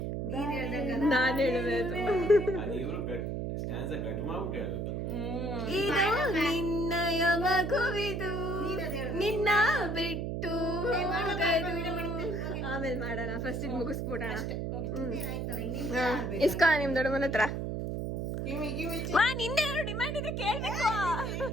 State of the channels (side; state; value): right; noise; hum, 2 dB below the sound